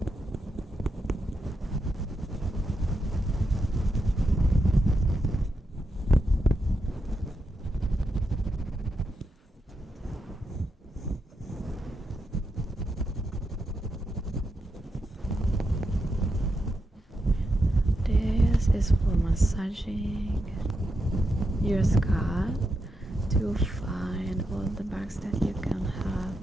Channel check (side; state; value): both; normal; correlation 0.85